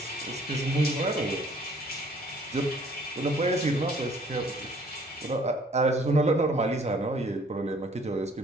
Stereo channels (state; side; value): normal; both; correlation 0.58